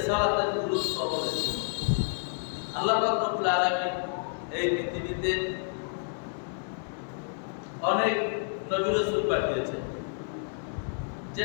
গুরুত্ব অপরিসীম। আল্লাহ পাক রব্বুল আলামিন এই পৃথিবীতে অনেক নবী রাসূল পাঠিয়েছেন,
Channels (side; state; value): right; silent; digital silence